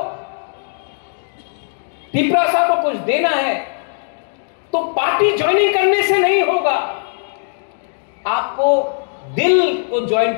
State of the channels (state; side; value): silent; right; digital silence